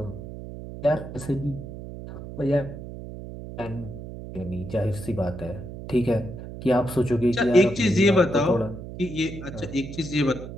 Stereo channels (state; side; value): noise; right; hum, 11 dB below the sound